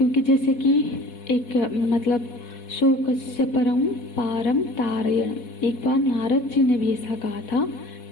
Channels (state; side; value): late; right; 4.1 ms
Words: जैसे कि एक मतलब शोकस्य परम पारम तारयण, एक बार नारद जी ने भी ऐसा कहा था